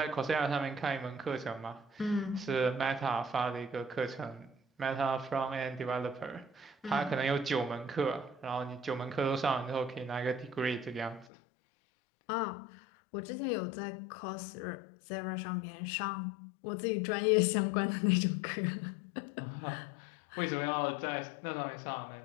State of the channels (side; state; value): right; drops out; at 11.2 s